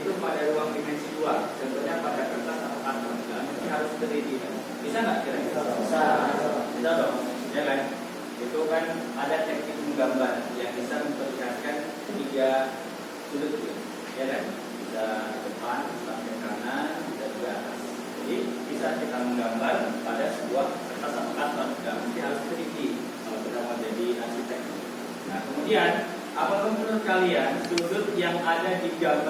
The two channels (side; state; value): both; identical; correlation 1.00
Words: pada ruang dimensi 2? Contohnya pada kertas atau karton. Ini harus 3D kan? Bisa nggak kira-kira? Bisa. Bisa dong, ya kan? Itu kan ada teknik menggambar yang bisa memperlihatkan 3 sudut, ya kan? Bisa depan, sampai kanan, dan juga atas. Jadi bisa kita menggambar pada sebuah kertas atau karton, nggak mesti harus 3D kalau kita mau jadi arsitek. Nah kemudian, apakah menurut kalian sudut yang ada di